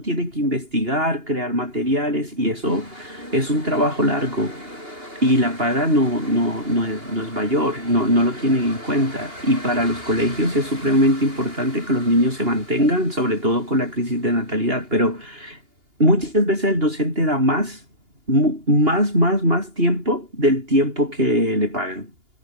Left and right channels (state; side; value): late; left; 2.8 ms